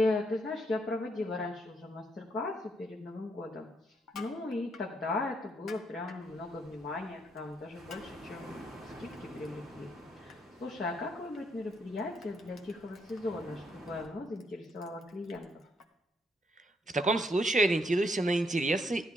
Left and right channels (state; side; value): normal; both; correlation 0.75